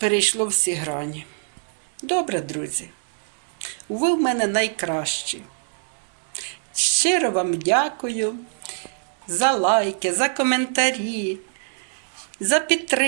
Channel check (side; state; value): left; silent; digital silence